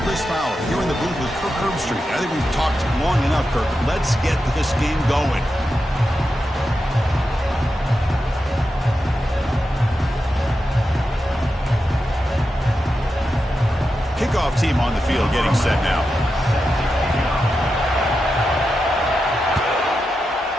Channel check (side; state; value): both; normal; correlation 0.89